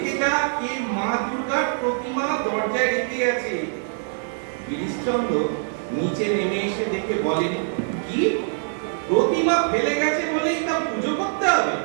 যা, কে মা দুর্গার প্রতিমা দরজায় রেখে আছে। গিরিশচন্দ্র নিচে নেমে এসে দেখে বলেন, কি প্রতিমা ফেলে গেছে বলেই তা পুজো করতে হবে?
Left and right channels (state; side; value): silent; left; digital silence